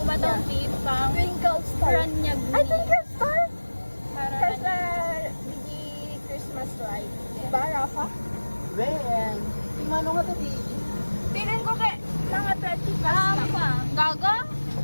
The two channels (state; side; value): inverted; both; correlation -1.00